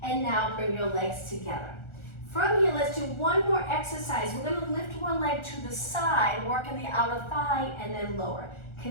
and now bring your legs together. From here, let's do 1 more exercise. We're going to lift one leg to the side, working the outer thigh, and then lower.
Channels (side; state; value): right; late; 1.4 ms